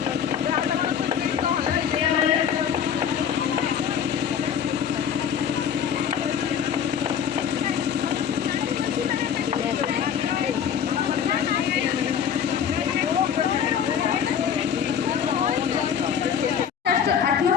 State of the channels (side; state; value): right; quieter; 8.2 dB